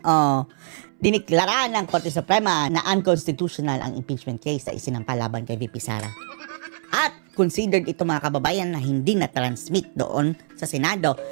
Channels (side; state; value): left; silent; 63 dB below the other